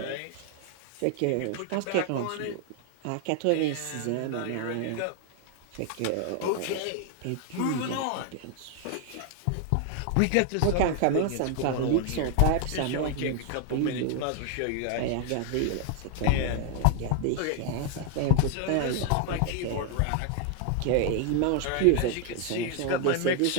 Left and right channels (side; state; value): both; different; correlation 0.00